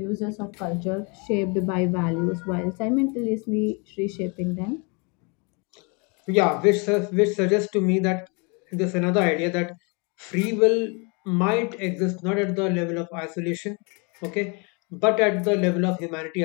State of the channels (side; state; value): right; quieter; 32.4 dB